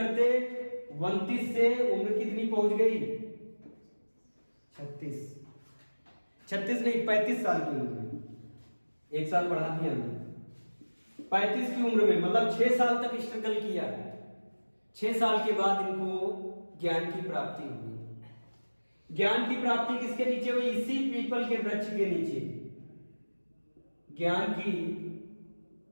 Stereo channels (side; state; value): both; inverted; correlation -1.00